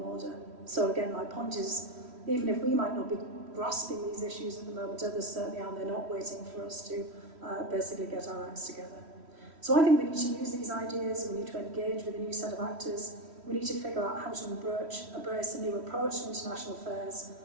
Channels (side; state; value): left; late; 3.1 ms